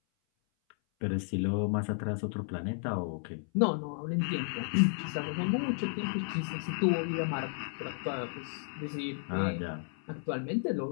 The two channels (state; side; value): silent; right; 56 dB below the other